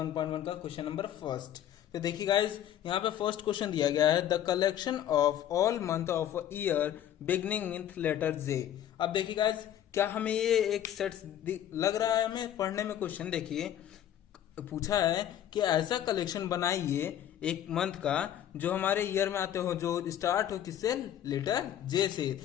का क्वेश्चन नंबर फर्स्ट। तो देखिए गाइस, यहाँ पे फर्स्ट क्वेश्चन दिया गया है the collection of all month of year beginning with letter J. अब देखिए गाइस, क्या हमें ये एक सेट लग रहा है हमें पढ़ने में? क्वेश्चन देखिए, पूछा है कि ऐसा कलेक्शन बनाइए एक मंथ का जो हमारे ईयर में आते हो, जो स्टार्ट हो किससे? लेटर जे से।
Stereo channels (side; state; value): right; quieter; 11.0 dB